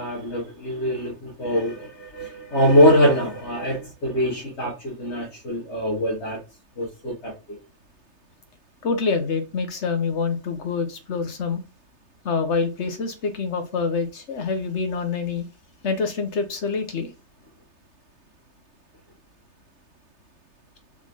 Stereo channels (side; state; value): right; late; 3.3 ms